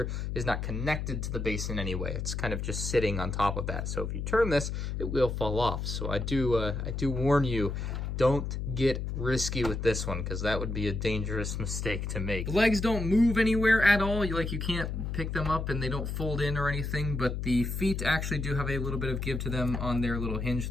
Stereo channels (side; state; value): left; noise; hum, 3 dB below the sound